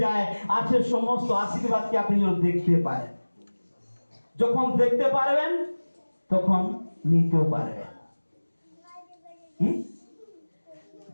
যায়, আছে সমস্ত আশীর্বাদকে আপনি যেন দেখতে পারেন। যখন দেখতে পারবেন তখন নিতেও পারবেন। কি?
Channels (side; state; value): both; inverted; correlation -1.00